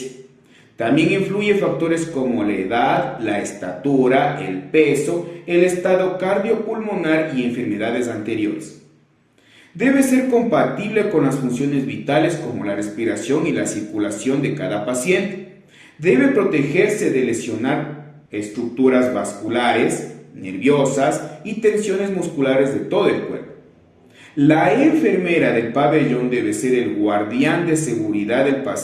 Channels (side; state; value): both; identical; correlation 1.00